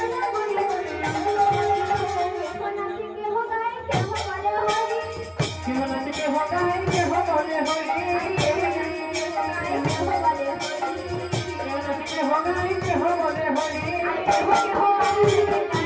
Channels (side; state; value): both; identical; correlation 1.00